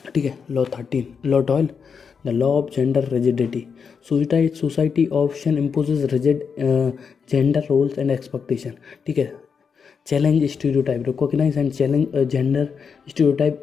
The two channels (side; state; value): right; quieter; 6.2 dB